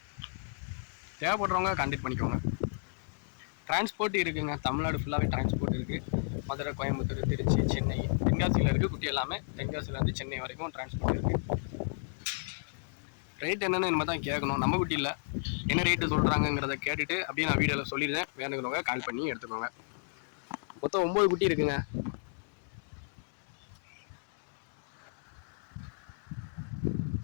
தேவைப்படுறவங்க கான்டெக்ட் பண்ணிக்கோங்க. டிரான்ஸ்போர்ட் இருக்குங்க, தமிழ்நாடு ஃபுல்லாகவே டிரான்ஸ்போர்ட் இருக்குது. மதுரை, கோயம்புத்தூர், திருச்சி, சென்னை, தென்காசியில் இருக்குது குட்டி எல்லாமே. தென்காசிலேருந்து சென்னை வரைக்கும் டிரான்ஸ்போர்ட் இருக்குது. ரேட் என்னென்னு நம்ம தான் கேட்கணும், நம்ம குட்டி இல்லை. என்ன ரேட்டு சொல்கிறாங்கங்கிறத கேட்டுட்டு அப்படியே நான் வீடியோவில் சொல்லிடுறேன். வேணுங்கிறவங்க கால் பண்ணி எடுத்துக்கோங்க. மொத்தம் 9 குட்டி இருக்குங்க.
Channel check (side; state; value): right; silent; digital silence